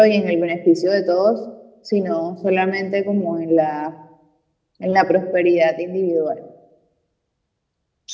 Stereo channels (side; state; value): both; identical; correlation 1.00